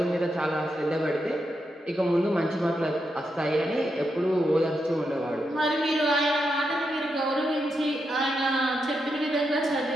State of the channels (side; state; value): both; normal; correlation 0.84